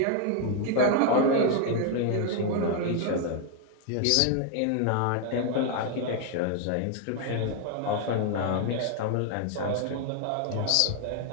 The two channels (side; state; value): both; different; correlation 0.00